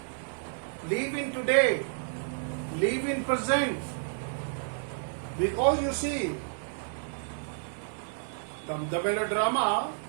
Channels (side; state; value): left; silent; digital silence